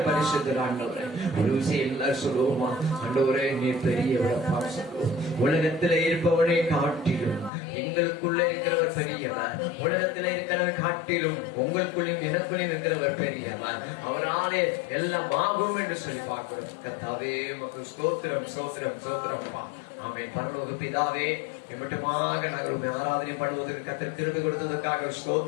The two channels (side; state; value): right; drops out; at 7.5 s